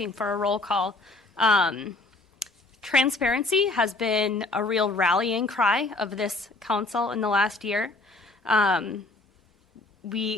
for a roll call. Transparency has been a real rallying cry of this council in the last year.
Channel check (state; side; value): quieter; right; 3.1 dB